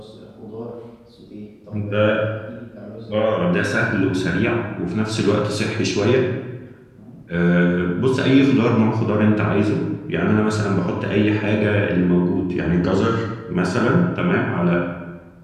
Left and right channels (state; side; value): identical; both; correlation 1.00